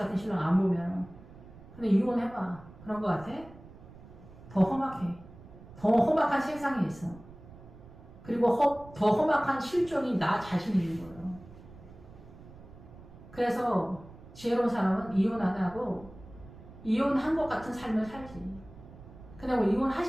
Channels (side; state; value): right; noise; rumble, 19 dB below the sound